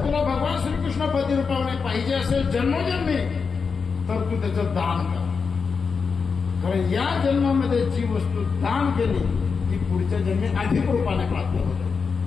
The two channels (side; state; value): right; quieter; 5.3 dB